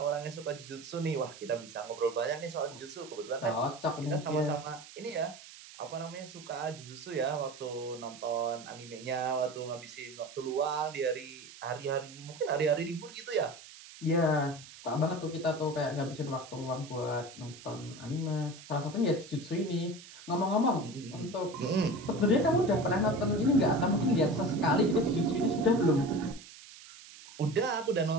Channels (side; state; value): right; noise; hiss, 17 dB below the sound